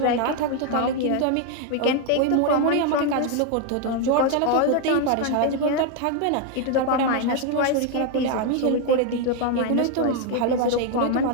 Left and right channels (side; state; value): both; different; correlation 0.01